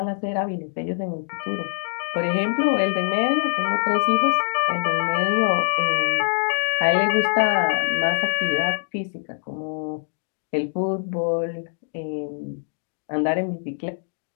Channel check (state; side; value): silent; right; digital silence